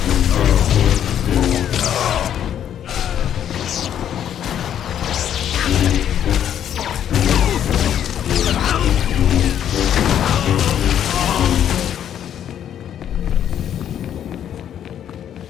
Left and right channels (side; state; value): right; quieter; 9.9 dB